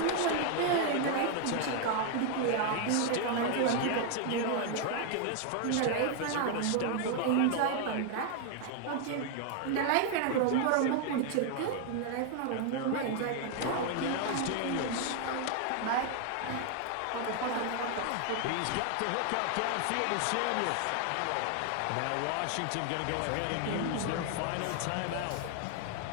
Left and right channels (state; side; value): different; both; correlation 0.00